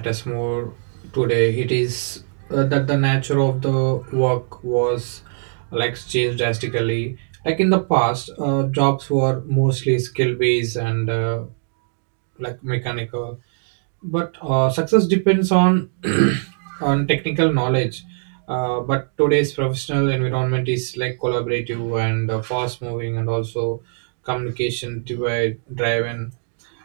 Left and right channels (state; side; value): silent; left; digital silence